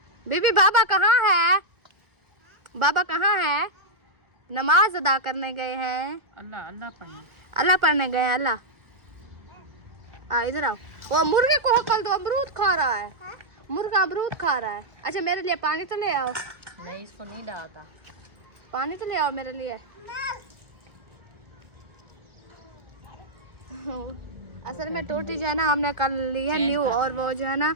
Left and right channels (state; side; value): late; left; 1.4 ms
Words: बीबी बाबा कहाँ है? बाबा कहाँ है? नमाज अदा करने गए हैं। अल्लाह अल्लाह पढ़ने, अल्लाह पढ़ने गए हैं। अल्लाह इधर आओ। वो मुर्गे को हकल दो, अमरूद खा रहा है। मुर्गा अमरूद खा रहा है। अच्छा मेरे लिए पानी तो ले आओ। नहीं इसको नहीं डालता, पानी तो ले आओ मेरे लिए। असल में टोटी जो है ना हमने कल ली है न्यू, और वो जो है ना